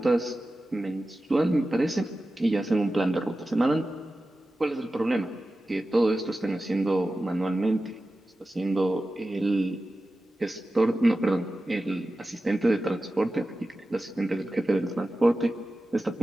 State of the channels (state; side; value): normal; both; correlation 0.94